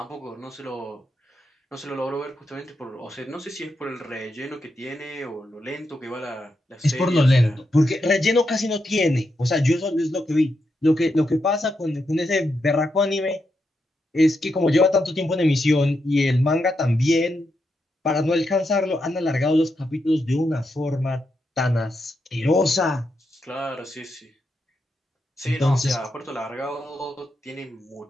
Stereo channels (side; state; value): both; normal; correlation 0.83